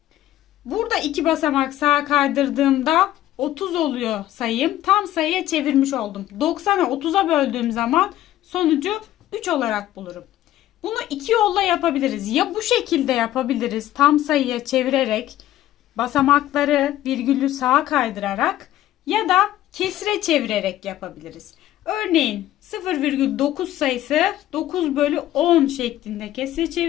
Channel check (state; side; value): quieter; right; 13.7 dB